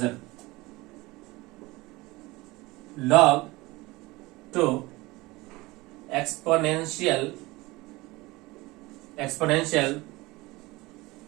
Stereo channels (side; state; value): left; quieter; 21.6 dB